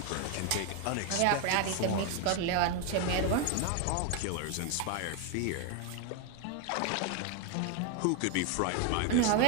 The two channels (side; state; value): both; different; correlation 0.01